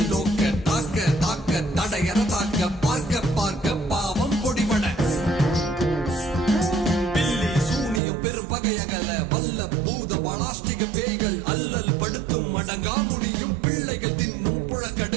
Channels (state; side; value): drops out; left; at 8.0 s